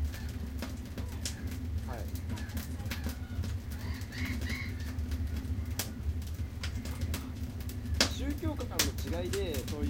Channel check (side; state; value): both; identical; correlation 1.00